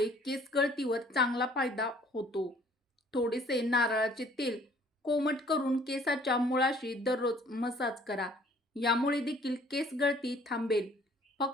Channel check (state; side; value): normal; both; correlation 0.57